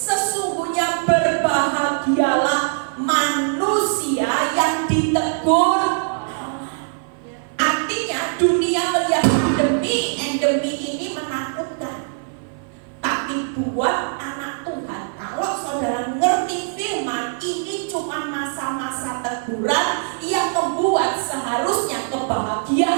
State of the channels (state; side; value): silent; left; 57 dB below the other